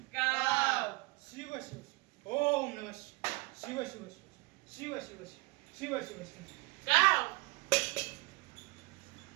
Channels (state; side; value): quieter; left; 23.5 dB